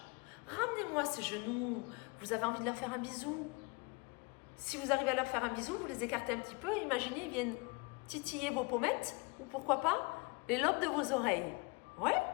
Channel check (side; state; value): right; quieter; 28.0 dB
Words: Ramenez-moi ces genoux, vous avez envie de leur faire un bisou. Si vous arrivez à leur faire un bisou, vous les écartez un petit peu. Imaginez, ils viennent titiller vos pommettes ou pourquoi pas les lobes de vos oreilles. Ouais,